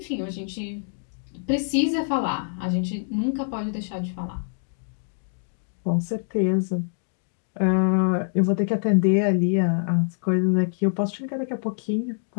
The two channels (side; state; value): right; silent; digital silence